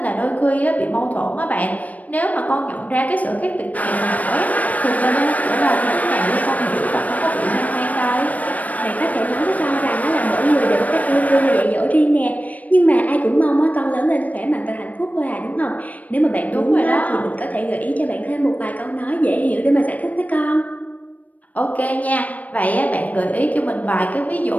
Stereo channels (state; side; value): late; right; 0.073 ms